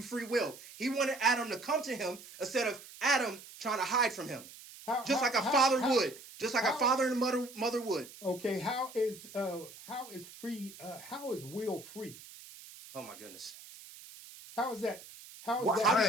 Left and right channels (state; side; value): noise; right; hiss, 17 dB below the sound